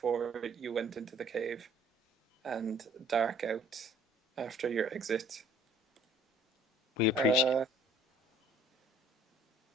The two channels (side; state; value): both; normal; correlation 0.55